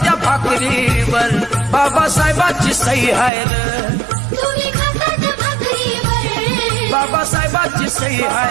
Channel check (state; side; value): drops out; left; at 3.3 s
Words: त्या भाकरीवर बाबासाहेबांची सही आहे रे, तुम्ही खाता त्या भाकरीवर, बाबासाहेबांची सही